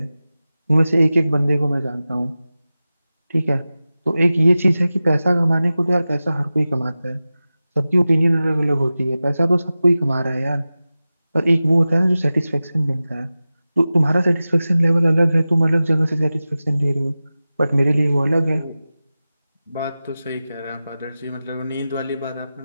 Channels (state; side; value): inverted; both; correlation -0.95